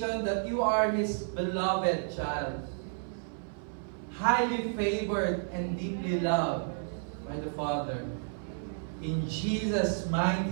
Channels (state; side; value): silent; left; 57 dB below the other